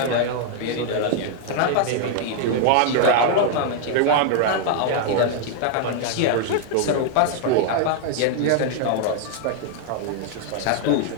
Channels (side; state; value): both; different; correlation 0.00